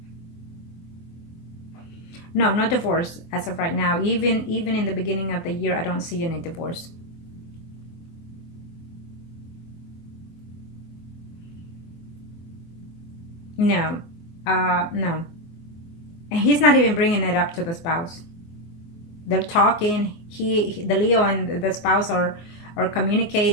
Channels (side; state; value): right; late; 24 ms